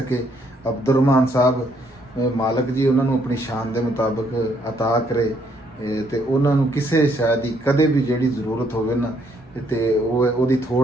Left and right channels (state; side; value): normal; both; correlation 0.70